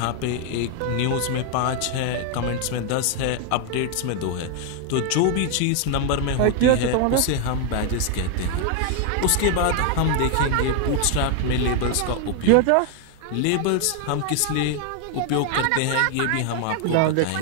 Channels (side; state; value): both; different; correlation 0.00